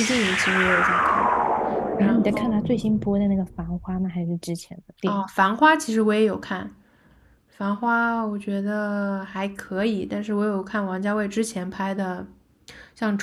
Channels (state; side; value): identical; both; correlation 1.00